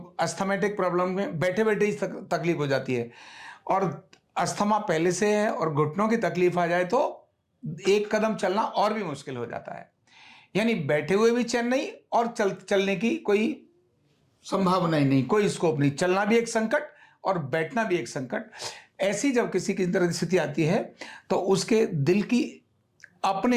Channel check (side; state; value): both; identical; correlation 1.00